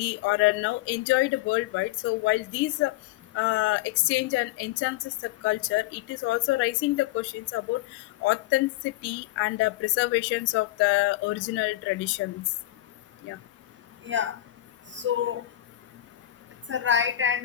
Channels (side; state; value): right; quieter; 15.3 dB